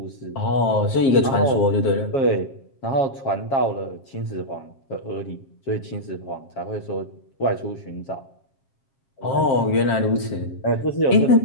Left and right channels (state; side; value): late; right; 7.5 ms